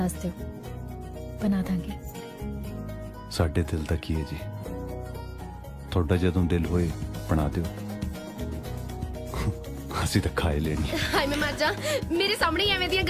ਦਿਓ, ਬਣਾ ਦਾਂਗੇ। ਸਾਡੇ ਦਿਲ ਦਾ ਕੀ ਹੈ ਜੀ, ਤੁਹਾਡਾ ਜਦੋਂ ਦਿਲ ਹੋਏ ਬਣਾ ਦਿਓ, ਅਸੀਂ ਤਾਂ ਖਾਏ ਲੈਣੀ। ਹਾਏ ਮੈਂ ਮਰ ਜਾ, ਮੇਰੇ ਸਾਹਮਣੇ ਹੀ ਐਵੇਂ ਦੀਆਂ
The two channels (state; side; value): identical; both; correlation 1.00